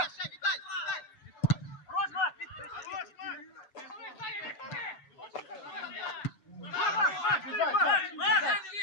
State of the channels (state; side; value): late; right; 7.9 ms